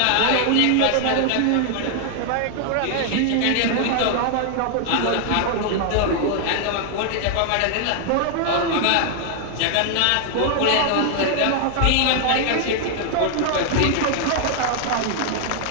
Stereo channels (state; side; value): different; both; correlation 0.00